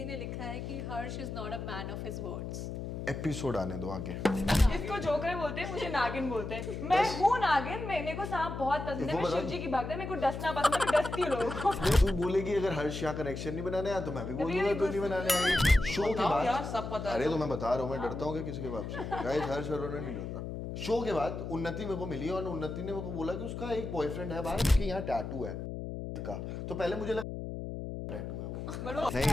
ने लिखा है कि Harsh is not a man of his words. Episode आने दो आगे। इसको जोकर बोलते हैं, मुझे नागिन बोलते हैं। मैं हूँ नागिन, मेरे को सांप बहुत पसंद है, मैं शिव जी की भक्त है, मेरे को डसना पसंद है, मैं डसती हूँ लोगों को। तू बोलेगी अगर हर्ष यहाँ कनेक्शन नहीं बनाने आया तो मैं भी बोल दूंगा तू नहीं बनाने आई। शो के बाद यार सब पता है। अरे तो मैं बता रहा हूँ मैं डरता हूँ क्या किसी के बाप से। गाइस हर्ष अरोड़ा नहीं डरता। शो के बाद उन्नति मेरे को मिली और उन्नति ने मेरे को बोला कि उसका एक बॉयफ्रेंड है बाहर, उसके यहाँ टैटू है का। तो पहले मुझे लगा टैटू है वो।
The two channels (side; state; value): left; noise; hum, 6 dB below the sound